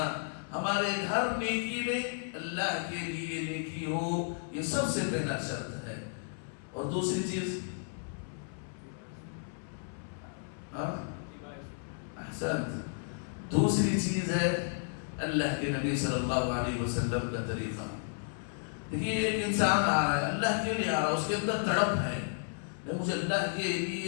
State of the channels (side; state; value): right; silent; 56 dB below the other